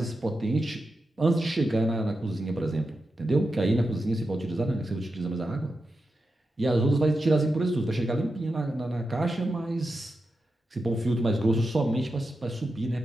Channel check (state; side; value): normal; both; correlation 0.89